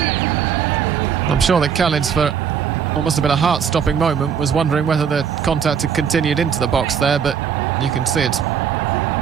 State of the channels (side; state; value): left; quieter; 7.5 dB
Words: I'm sure that Khalid's, for what must have been a heart-stopping moment, was wondering whether the contact had continued into the box there, but you can see it's